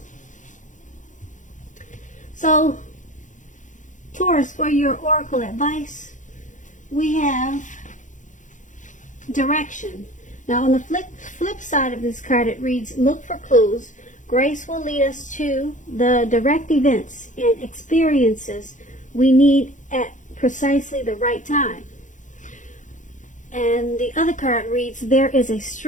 So, Taurus, for your oracle advice, we have direction. Now, on the flip side of this card, it reads, look for clues. Grace will lead us to the direct events and experiences we need at precisely the right time. And the other card reads, there is a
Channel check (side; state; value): right; late; 0.36 ms